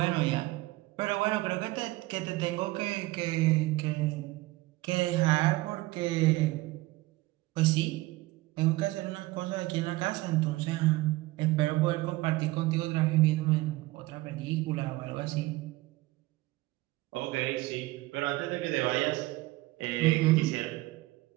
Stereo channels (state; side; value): quieter; left; 19.7 dB